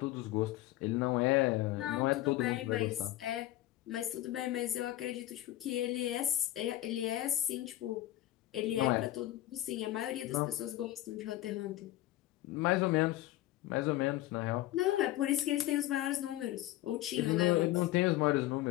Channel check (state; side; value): quieter; right; 15.3 dB